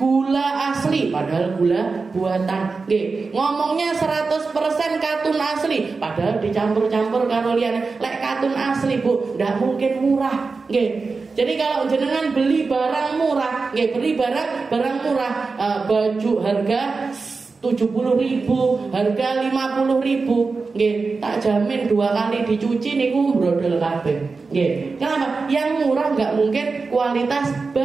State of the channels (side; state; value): left; quieter; 4.3 dB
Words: asli padahal gula buatan. Ngomongnya 100% katun asli padahal dicampur-campur karo liyane. Lek katun asli, Bu, ndak mungkin murah. Jadi kalau jenengan beli barang murah, beli barang murah, baju harga 70.000, harga 50.000, tak jamin 2 kali dicuci niku brodol kabeh. Kenapa? Yang murah nggak mungkin kualitas